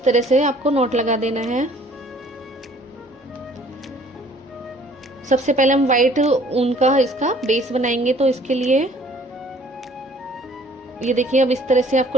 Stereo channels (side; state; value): both; normal; correlation 0.56